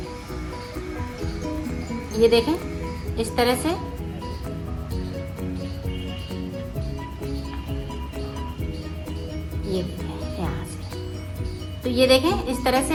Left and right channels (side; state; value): both; identical; correlation 1.00